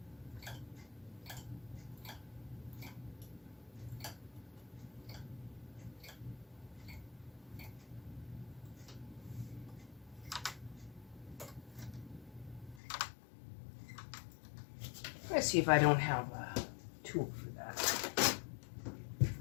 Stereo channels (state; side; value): drops out; right; at 12.8 s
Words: Let's see if I don't have a tool for